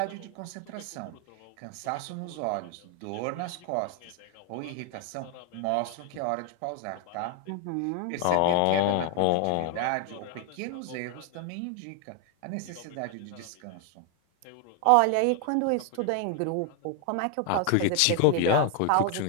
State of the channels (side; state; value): both; different; correlation 0.00